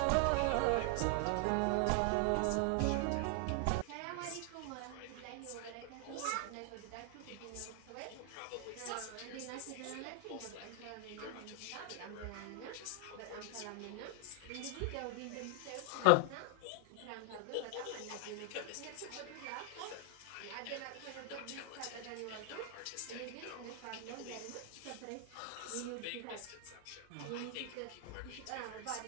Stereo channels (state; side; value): different; both; correlation 0.00